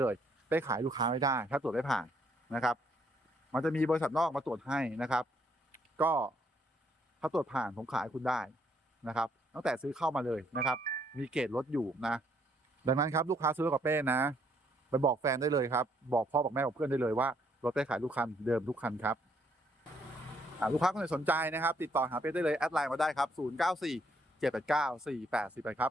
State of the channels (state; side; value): normal; both; correlation 0.69